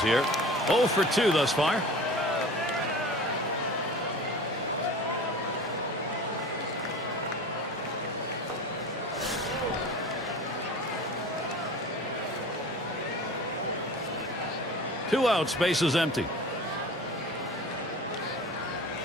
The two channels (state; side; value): normal; both; correlation 0.38